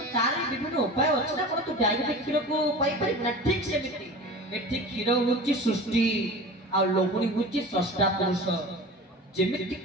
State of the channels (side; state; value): both; normal; correlation 0.35